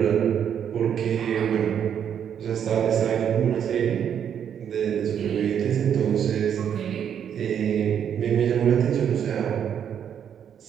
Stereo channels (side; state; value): left; quieter; 8.6 dB